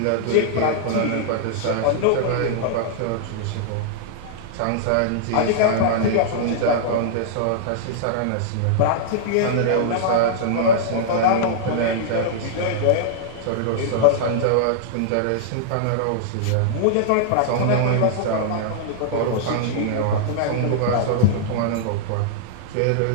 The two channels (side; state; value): both; different; correlation -0.02